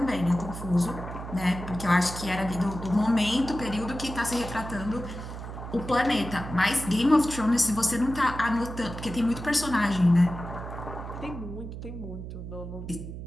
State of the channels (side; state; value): right; noise; hum, 9 dB below the sound